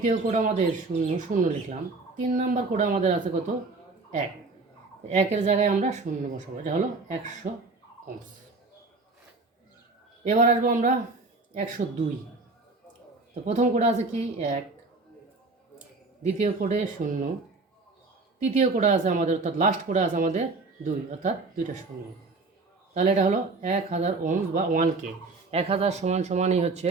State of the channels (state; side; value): quieter; left; 3.7 dB